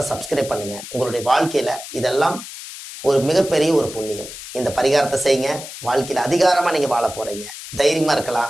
சப்ஸ்கிரைப் பண்ணுங்க. உங்களுடைய வாழ்க்கையில இதெல்லாம் ஒரு மிகப்பெரிய ஒரு புண்ணியம். இந்த பரிகாரத்தை செய்யுங்க. வாழ்க்கையில அதிகாரமா நீங்க வாழ போறீங்க. தைரியமா இருக்கலாம்.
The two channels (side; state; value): left; noise; hiss, 12 dB below the sound